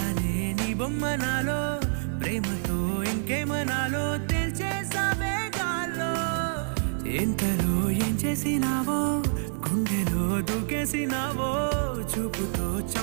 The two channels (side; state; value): left; silent; 60 dB below the other